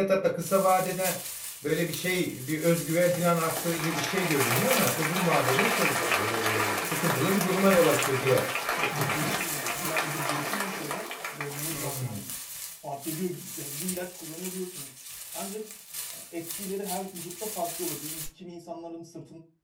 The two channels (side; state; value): both; identical; correlation 1.00